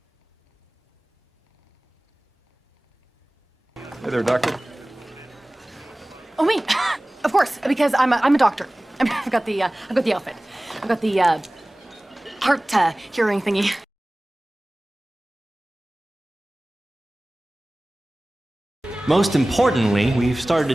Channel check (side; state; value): both; normal; correlation 0.98